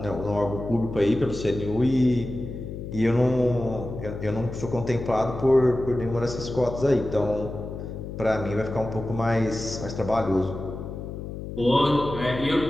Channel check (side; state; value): left; noise; hum, 8 dB below the sound